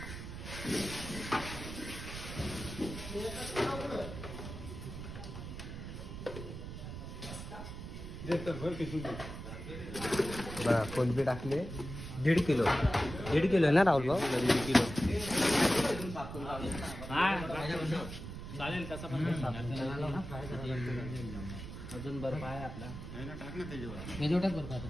बघा कोलबी टाकले 1.5 किलो. 1.5 किलो आहे ना राहुल भाऊ. 1.5 किलो. चालेल कसं पण. अजून बर्फ आहे आपला. टाक ना त्याच्यावर बर्फ आता.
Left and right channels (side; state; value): right; noise; rumble, 9 dB below the sound